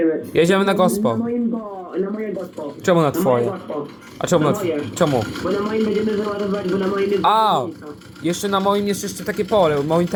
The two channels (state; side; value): identical; both; correlation 1.00